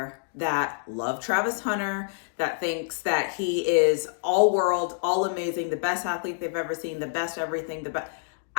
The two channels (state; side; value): silent; right; digital silence